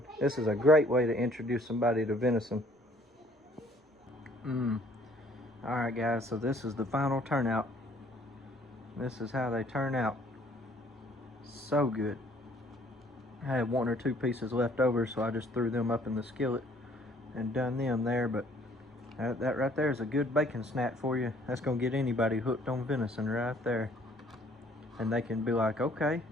This is a great way to introduce somebody to venison. Alright guys, so this is the final turnout. This is how they turn out. So good. I had 1 or 2 pieces left over, so I just threw them up in the skillet and done them there, but That right there is a good bacon snack for you. That's gonna get anybody hooked on venison right there. And they can be like, okay,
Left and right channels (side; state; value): both; normal; correlation 0.59